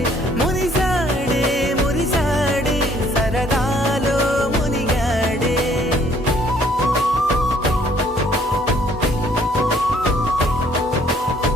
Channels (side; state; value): both; normal; correlation 0.62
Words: మురిసాడే మురిసాడే సరదాలో మునిగాడే